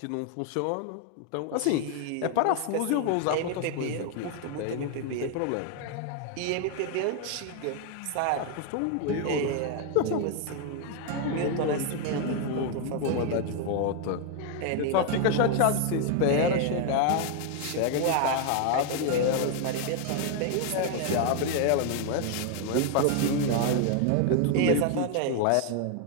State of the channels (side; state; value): both; different; correlation 0.00